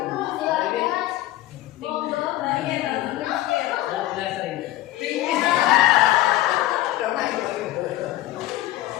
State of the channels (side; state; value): right; quieter; 15.5 dB